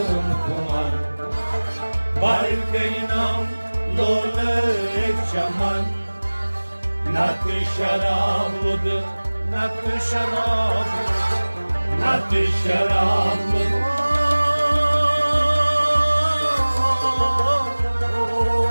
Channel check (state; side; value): inverted; both; correlation -1.00